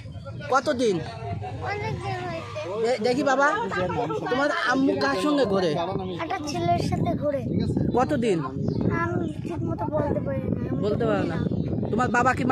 কতদিন? অনেকদিন হয়েছে। দেখি বাবা, তোমার আম্মু কার সঙ্গে ঘুরে? একটা ছেলের সাথে ঘুরে। কতদিন? আমি ঠিক মতো বলতে পারি না। বলতে পারো না? তোমার বাবা কি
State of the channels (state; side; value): identical; both; correlation 1.00